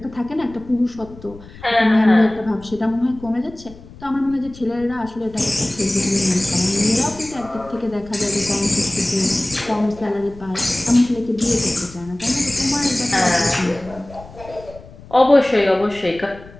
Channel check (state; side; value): noise; left; rumble, 19 dB below the sound